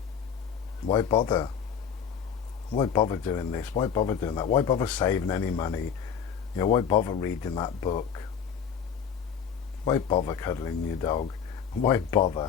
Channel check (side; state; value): right; quieter; 7.4 dB